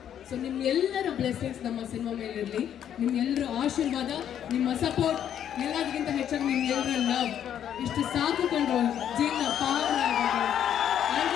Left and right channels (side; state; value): right; quieter; 9.8 dB